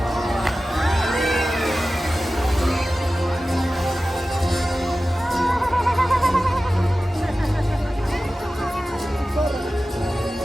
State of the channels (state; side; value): normal; both; correlation 0.95